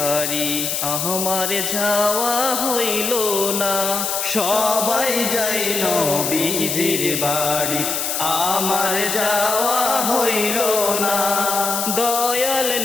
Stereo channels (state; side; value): noise; left; hiss, 1 dB below the sound